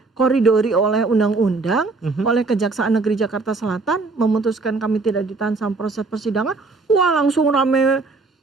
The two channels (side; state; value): left; quieter; 3.8 dB